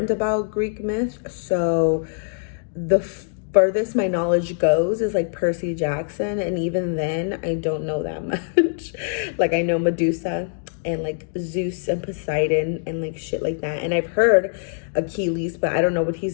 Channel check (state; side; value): silent; right; digital silence